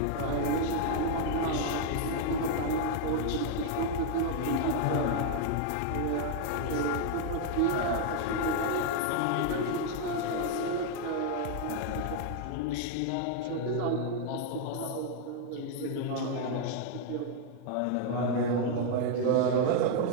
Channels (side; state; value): both; different; correlation 0.00